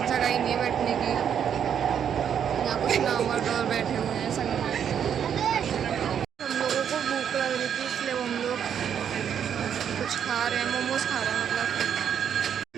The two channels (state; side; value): quieter; left; 8.5 dB